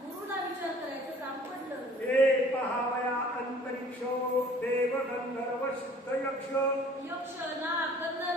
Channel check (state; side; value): normal; both; correlation 0.52